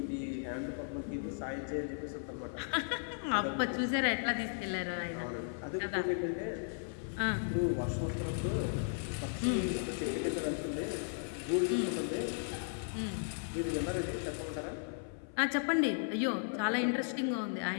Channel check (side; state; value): right; silent; 54 dB below the other